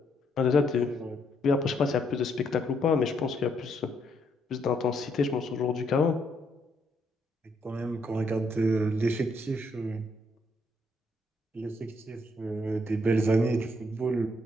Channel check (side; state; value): both; normal; correlation 0.73